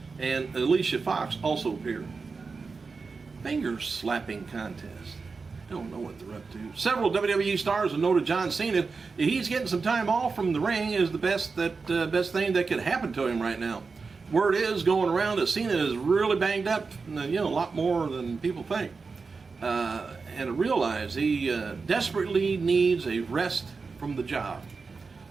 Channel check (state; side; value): quieter; left; 4.6 dB